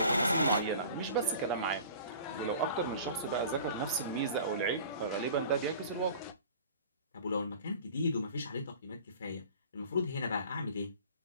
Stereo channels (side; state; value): both; inverted; correlation -0.43